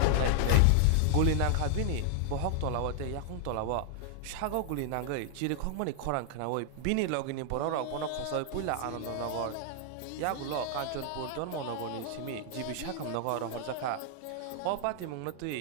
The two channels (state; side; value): different; both; correlation 0.00